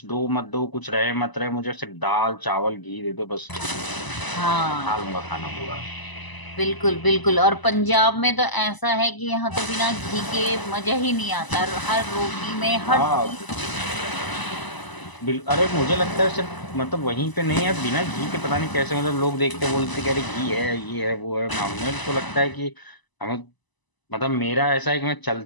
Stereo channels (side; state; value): right; late; 1.0 ms